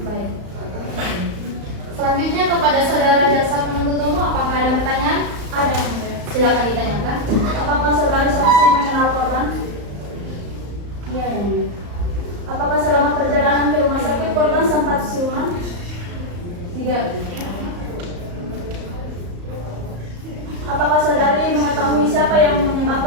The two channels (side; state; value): left; late; 34 ms